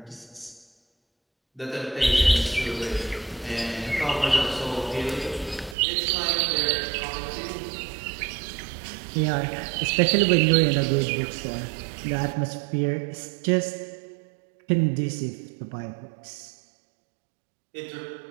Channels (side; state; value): left; drops out; at 5.8 s